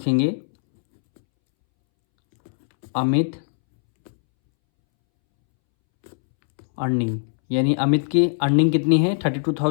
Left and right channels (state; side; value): silent; right; 65 dB below the other